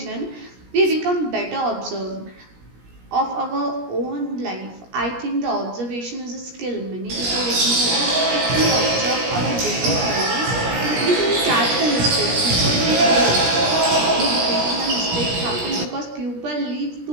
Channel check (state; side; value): late; left; 17 ms